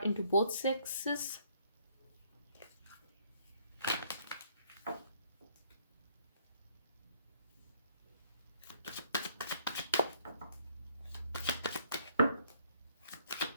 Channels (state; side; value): inverted; both; correlation -0.65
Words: into both sexes.